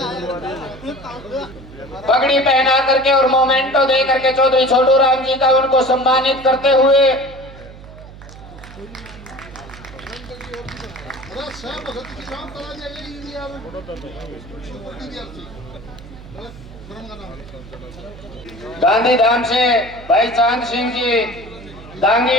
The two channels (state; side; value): noise; right; hum, 17 dB below the sound